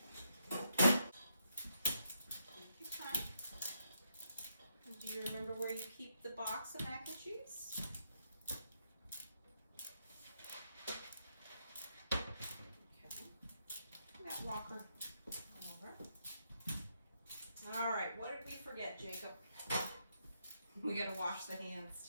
Take your time. And do you remember where you keep the box of mac and cheese? Okay. That walker over. All right, what did we forget, Jacob? We gotta wash the hands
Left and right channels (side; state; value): both; inverted; correlation -0.80